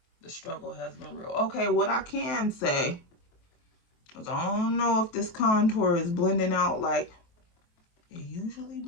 the struggle has been real. Okay, what I can say is I don't know if this contour is blending out like it usually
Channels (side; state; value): right; late; 23 ms